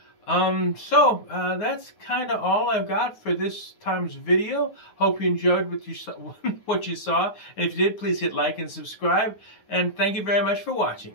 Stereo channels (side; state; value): right; late; 9.5 ms